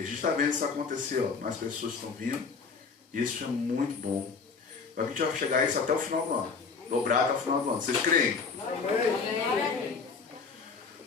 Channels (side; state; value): right; quieter; 5.1 dB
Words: a gente está vendo isso acontecer, ó. Mais pessoas estão vindo, e isso é muito bom. A gente vai chegar a isso até o final do ano, dobrar até o final do ano. Vocês creem? Amém.